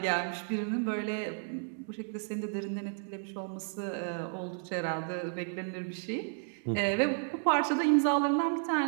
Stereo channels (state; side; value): silent; left; digital silence